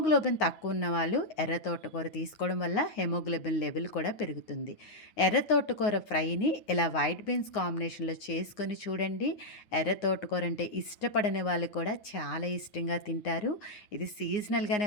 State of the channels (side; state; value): right; late; 9.6 ms